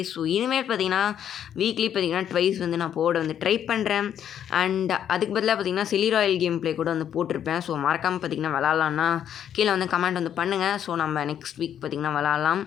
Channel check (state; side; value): quieter; right; 9.6 dB